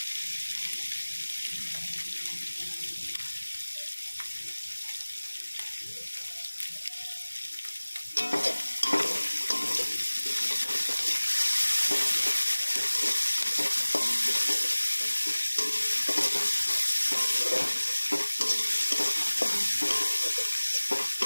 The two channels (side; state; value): both; inverted; correlation -1.00